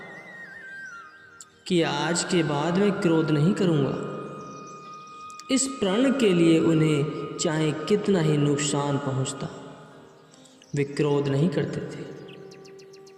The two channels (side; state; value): both; identical; correlation 1.00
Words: कि आज के बाद मैं क्रोध नहीं करूँगा। इस प्रण के लिए उन्हें चाहे कितना ही नुकसान पहुँचता, वे क्रोध नहीं करते थे।